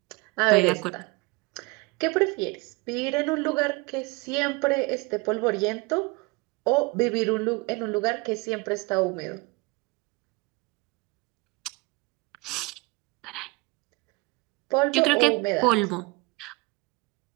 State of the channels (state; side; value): quieter; left; 25.1 dB